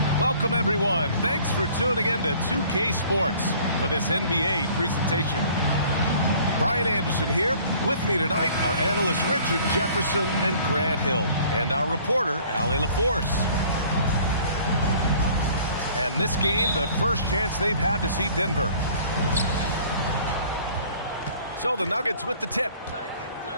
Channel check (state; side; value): inverted; both; correlation -0.53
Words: Welcome, everyone. Thanks for tuning in to 2K Sports for this NBA presentation. Brian Anderson here. With me tonight are analysts Richard Jefferson and Grant Hill, and our reporter, Allie LaForce. And this game, the first chance they've had to see Denver. So the Nuggets with the tip.